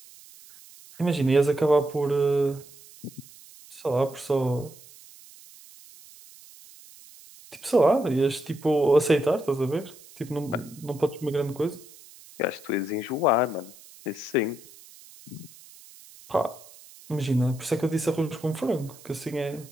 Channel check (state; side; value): noise; right; hiss, 22 dB below the sound